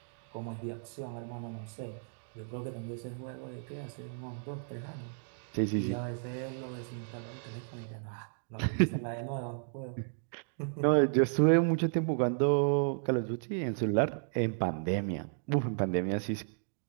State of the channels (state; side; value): silent; left; digital silence